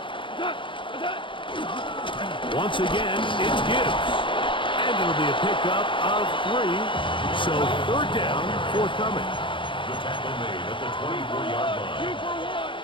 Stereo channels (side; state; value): right; late; 0.24 ms